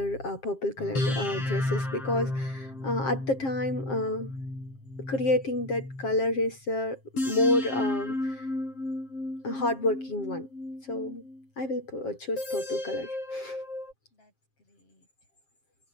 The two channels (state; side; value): late; right; 7.5 ms